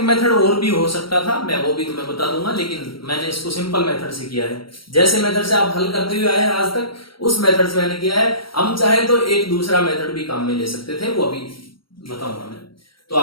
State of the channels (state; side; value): late; right; 0.74 ms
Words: मेथड और भी हो सकता था, मैं वो भी तुम्हें बता दूंगा, लेकिन मैंने इसको सिंपल मेथड से किया है। जैसे मेथड से आप हल करते हुए आए हैं आज तक, उस मेथड से मैंने किया है। हम चाहे तो एक दूसरा मेथड भी काम में ले सकते थे, वो अभी बताऊंगा मैं। तो